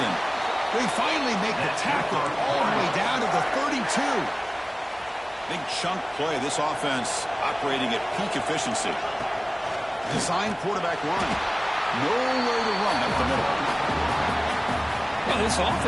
They finally make the tackle all the way down to the 32. Big chunk play. This offense operating at peak efficiency. Designed quarterback run. Nowhere to run up the middle. Well, this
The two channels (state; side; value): identical; both; correlation 1.00